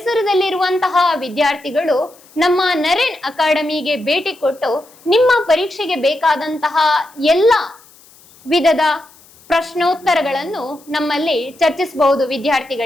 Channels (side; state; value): left; noise; hiss, 26 dB below the sound